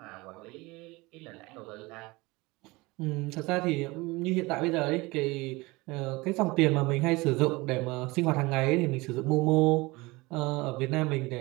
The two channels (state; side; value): quieter; left; 22.9 dB